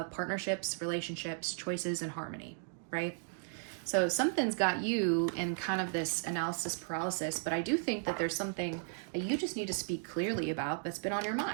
partnerships, relationships, choices, and harmony, right? So something's got you in kind of this analysis paralysis, but I do think that there's something that you just need to speak clearly about that's been on your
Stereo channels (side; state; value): left; silent; 54 dB below the other